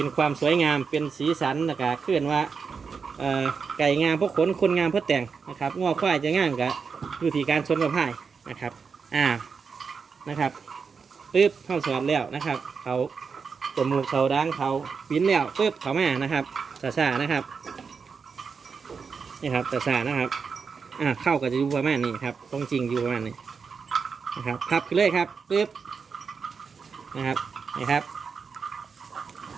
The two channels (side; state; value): left; quieter; 5.6 dB